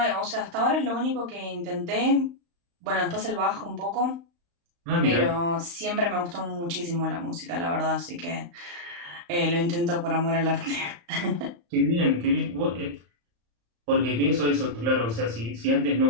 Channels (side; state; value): left; late; 35 ms